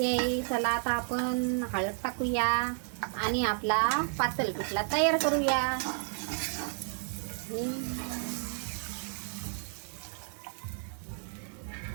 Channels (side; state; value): left; silent; 57 dB below the other